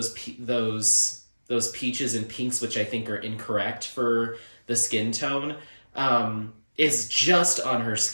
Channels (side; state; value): both; inverted; correlation -1.00